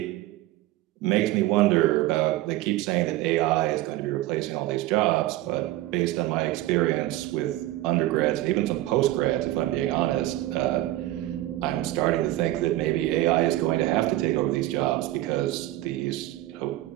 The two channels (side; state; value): left; quieter; 16.1 dB